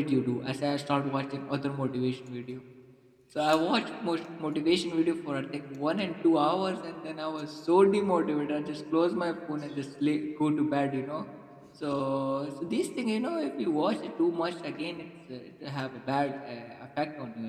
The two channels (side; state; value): both; identical; correlation 1.00